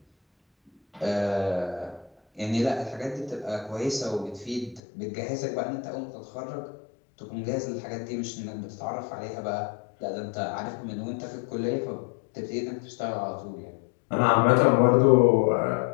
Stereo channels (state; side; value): drops out; right; at 4.8 s